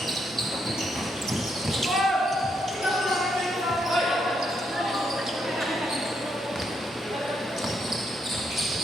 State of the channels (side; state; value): both; normal; correlation 0.77